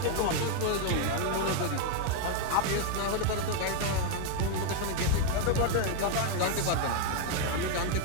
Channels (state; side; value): different; both; correlation 0.01